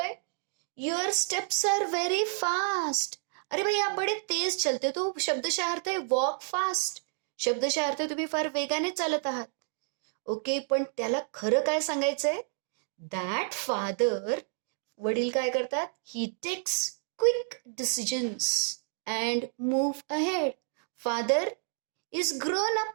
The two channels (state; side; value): silent; left; 58 dB below the other